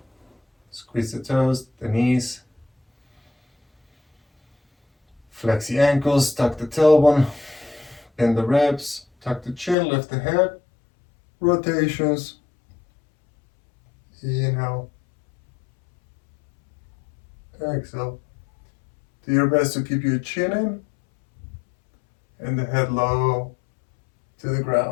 squeeze the toes, the knees, flex the ankles, tuck the tailbone, bend the ribs, tuck the chin, lift the head, rotations, inhale, exhale. Do your best to keep your chin in and the head low to the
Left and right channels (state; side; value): drops out; right; at 9.8 s